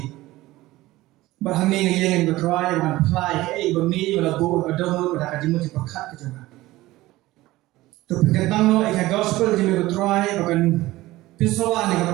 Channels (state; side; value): quieter; left; 17.8 dB